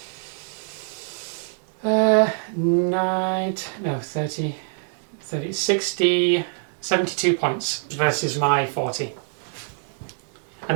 72 points versus my 40. And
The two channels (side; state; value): left; silent; digital silence